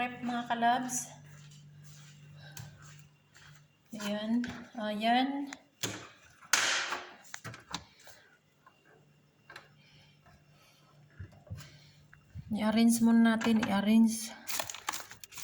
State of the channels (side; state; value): both; identical; correlation 1.00